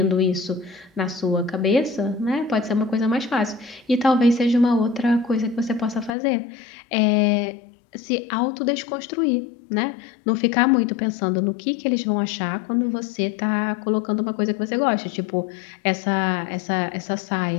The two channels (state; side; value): drops out; right; at 6.2 s